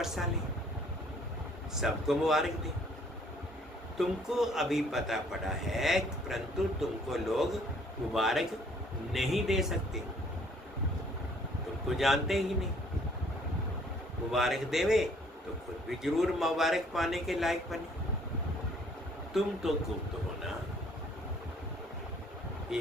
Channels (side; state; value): both; normal; correlation 0.60